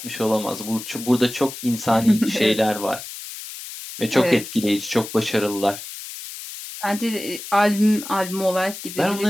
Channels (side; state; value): left; noise; hiss, 11 dB below the sound